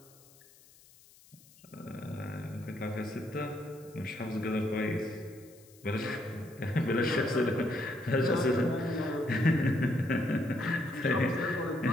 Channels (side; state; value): left; noise; hiss, 25 dB below the sound